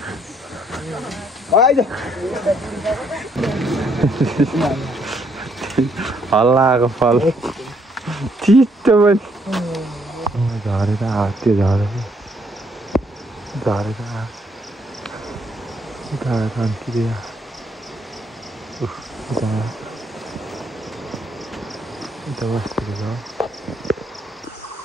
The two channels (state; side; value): normal; both; correlation 0.70